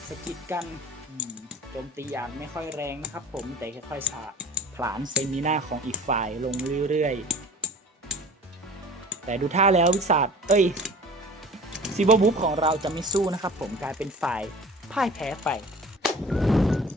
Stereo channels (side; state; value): both; normal; correlation 0.43